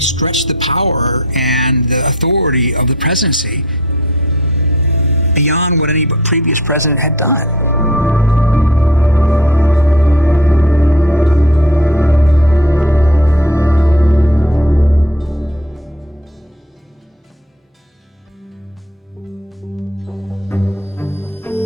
the power and the authority of the presidency beyond what any previous president had done.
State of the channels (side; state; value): both; normal; correlation 0.49